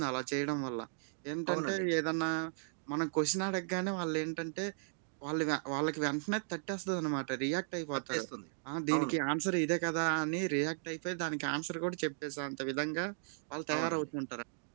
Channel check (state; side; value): silent; left; digital silence